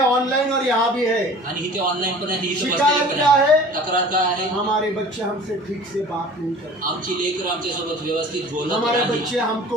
ऑनलाइन और यहाँ भी है. आणि इथे ऑनलाईन पण आहे, इथे शिकायत बसलेले पण क्या आहे. है? तक्रार काय आहे? हमारे बच्चे हमसे ठीक से बात नहीं करते. आमची लेकरं आमच्यासोबत व्यवस्थित बोलत हमारे नाही. बच्चे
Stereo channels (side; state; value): both; normal; correlation 0.44